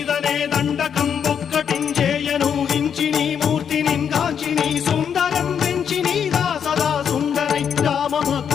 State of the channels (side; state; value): right; quieter; 7.8 dB